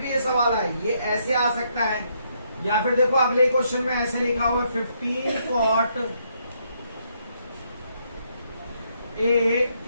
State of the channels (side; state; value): both; inverted; correlation -0.74